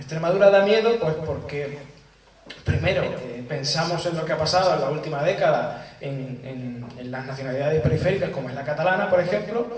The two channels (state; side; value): identical; both; correlation 1.00